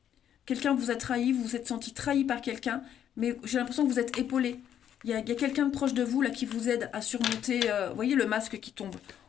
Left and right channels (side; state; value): right; quieter; 9.8 dB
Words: Quelqu'un vous a trahi, vous vous êtes senti trahi par quelqu'un, mais j'ai l'impression que vous êtes épaulé. Il y a quelqu'un de proche de vous là qui vous aide à surmonter... vous voyez le masque qui tombe.